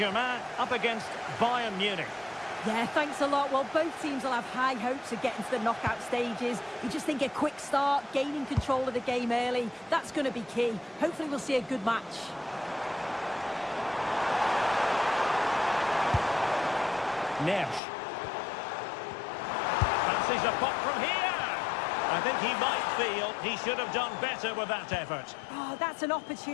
up against Bayern Munich. Yeah, thanks a lot. Well, both teams will have high hopes of getting to the knockout stages. You just think a quick start, gaining control of the game early, that's going to be key. Hopefully we'll see a good match. Neves. Fancies a pop from here. I think he might feel he should have done better with that effort. Oh, that's an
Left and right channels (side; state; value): right; drops out; at 17.8 s